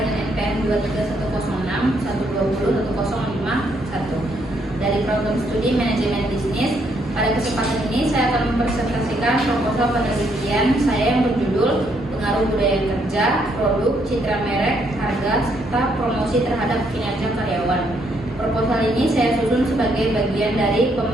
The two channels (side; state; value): both; normal; correlation 0.72